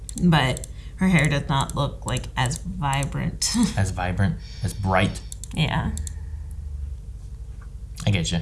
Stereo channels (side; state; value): both; identical; correlation 1.00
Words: But her hair does not look, like, as vibrant. As vibrant, as bright. Yeah. I get you.